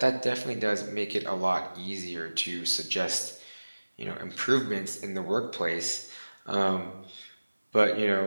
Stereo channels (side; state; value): both; inverted; correlation -1.00